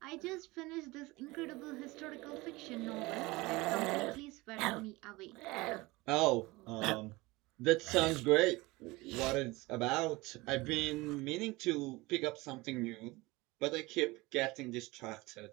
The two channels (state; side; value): quieter; left; 22.1 dB